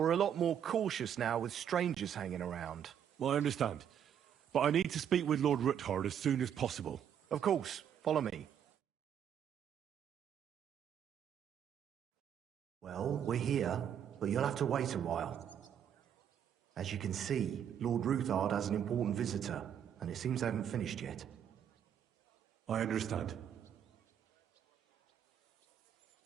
a lot more cautious now with strangers hanging around. Well, I understand. But I need to speak with Lord Ruthard as soon as possible. Of course, follow me. Well, we're here, but you'll have to wait a while. As you can see, Lord Ruthard has an important visitor, and it seems they haven't finished yet. I understand.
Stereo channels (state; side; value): quieter; left; 9.0 dB